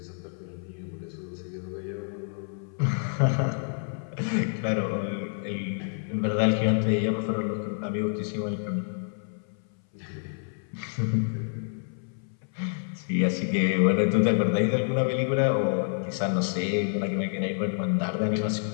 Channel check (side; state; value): right; silent; 59 dB below the other